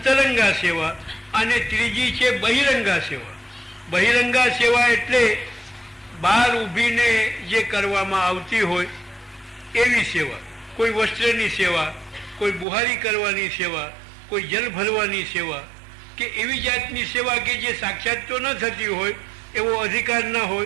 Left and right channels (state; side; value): drops out; left; at 12.7 s